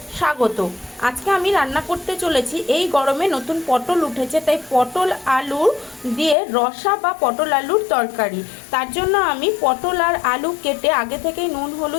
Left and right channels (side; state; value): right; drops out; at 6.4 s